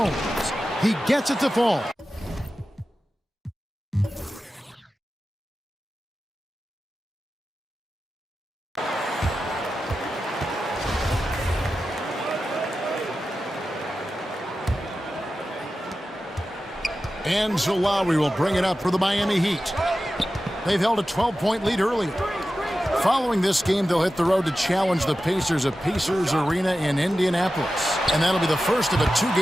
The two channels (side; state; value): both; normal; correlation 0.93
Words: he gets it to fall. And so Lowry will bring it up for the Miami Heat. They've held a 12-point lead earlier. Following this game, they'll hit the road to challenge the Pacers at Pacers Arena in Indianapolis. And that'll be the first of a